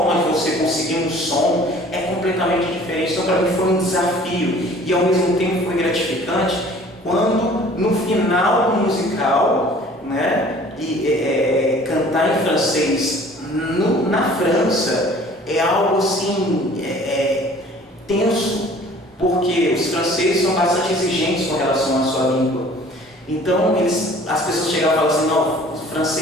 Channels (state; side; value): normal; both; correlation 0.50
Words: de você conseguir um som é completamente diferente. Então, para mim, foi um desafio. E ao mesmo tempo foi gratificante quando, no final do musical, né, cantar em francês na França é algo assim tenso, porque os franceses são bastante exigentes com relação à sua língua. Então, as pessoas chegavam e falavam assim, não, os